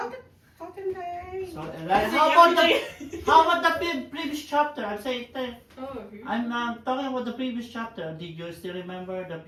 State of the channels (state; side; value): identical; both; correlation 1.00